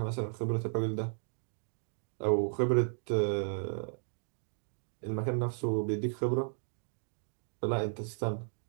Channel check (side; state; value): left; silent; digital silence